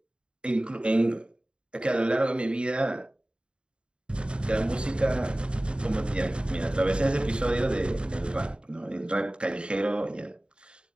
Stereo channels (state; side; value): late; left; 0.053 ms